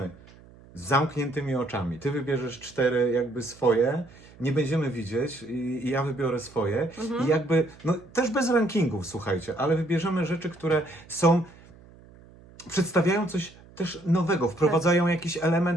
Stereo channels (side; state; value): right; noise; hum, 23 dB below the sound